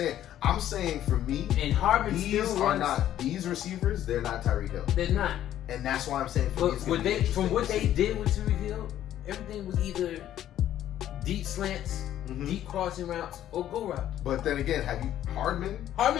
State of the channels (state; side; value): quieter; right; 11.9 dB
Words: I'm saying for me. And Hardman these receivers. They're not Tyreek Hill. They're not. And that's why I'm saying. For me, from what they did with Tyreek Hill, everything was either deep slants, deep crossing routes, or go routes. But then again, have you Hardman?